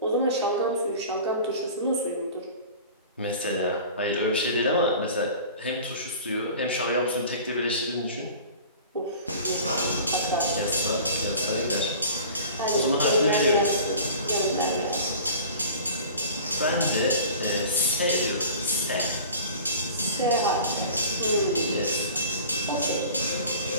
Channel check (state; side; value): inverted; both; correlation -0.41